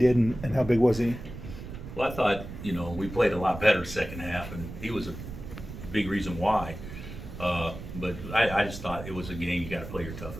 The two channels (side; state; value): right; noise; rumble, 11 dB below the sound